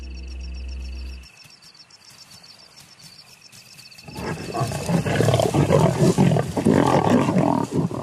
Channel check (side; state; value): both; identical; correlation 1.00